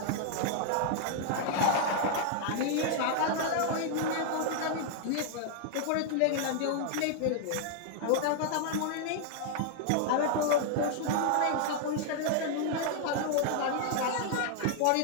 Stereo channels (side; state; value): both; different; correlation 0.00